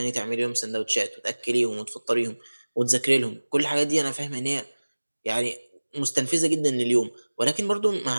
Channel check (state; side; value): inverted; both; correlation -1.00